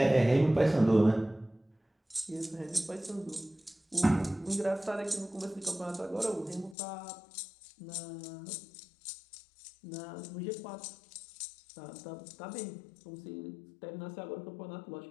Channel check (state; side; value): drops out; right; at 6.8 s